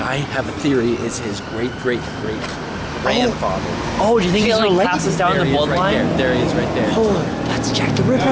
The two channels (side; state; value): both; identical; correlation 1.00